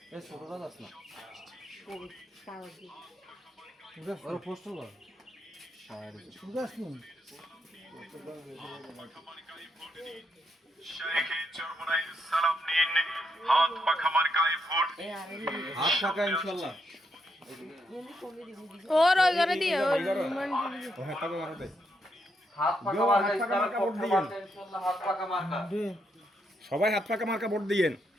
হাত পাখা মার্কায় ভোট। হাত ফাঁকা ইনশাল্লাহ। और घर दिए और হাত ফাঁকা মার্কা ইসলামের পক্ষে মার্কা ইনশাল্লাহ, হাত ফাঁকা মার্কা। সবাই হাত পাকা মার্কা ভোট দিয়েন।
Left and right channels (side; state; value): both; normal; correlation 0.79